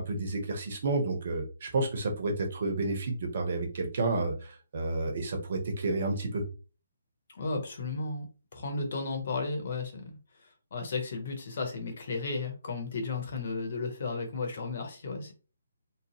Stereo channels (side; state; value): both; inverted; correlation -0.64